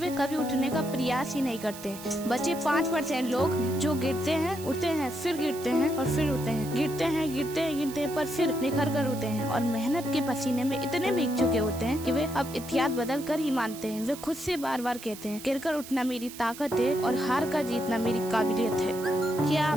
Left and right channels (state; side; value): noise; right; hiss, 14 dB below the sound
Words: कभी उठने का प्रयास ही नहीं करते। बचे 5% लोग जो गिरते हैं, उठते हैं, फिर गिरते हैं और फिर उठते हैं, गिरते हैं पर फिर निखर कर उठते हैं और मेहनत के पसीने में इतने भीग चुके होते हैं कि वे अब इतिहास बदल कर ही मानते हैं। वे खुद से बार बार कहते हैं, गिरकर उठना मेरी ताकत है और हार कर जीतना मेरी काबिलियत है। क्या